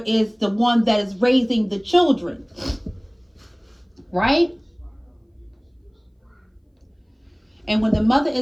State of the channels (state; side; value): identical; both; correlation 1.00